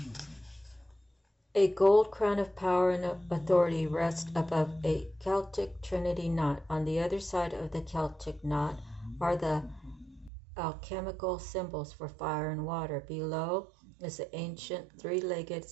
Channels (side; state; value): left; drops out; at 10.3 s